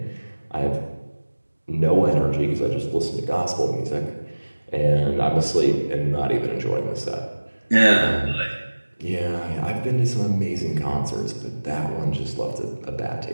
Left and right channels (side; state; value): both; inverted; correlation -1.00